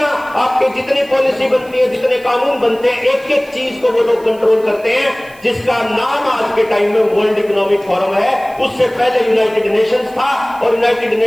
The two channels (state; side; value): noise; right; hiss, 26 dB below the sound